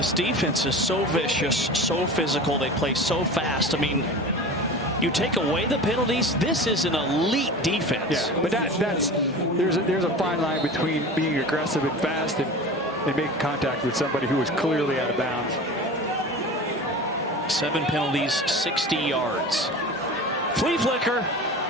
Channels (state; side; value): normal; both; correlation 0.34